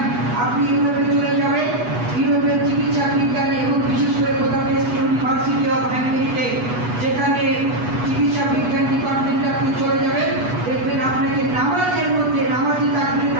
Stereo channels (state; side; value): late; left; 8.2 ms